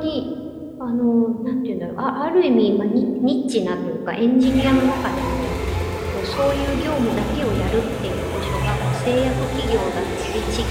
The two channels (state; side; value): identical; both; correlation 1.00